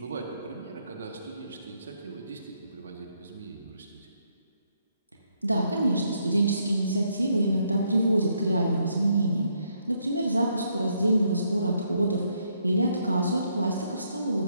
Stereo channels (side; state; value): both; inverted; correlation -0.74